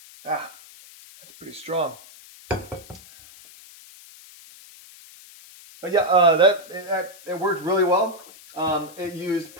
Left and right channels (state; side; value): noise; left; hiss, 21 dB below the sound